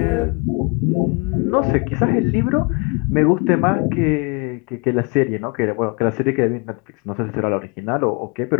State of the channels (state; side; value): quieter; right; 30.4 dB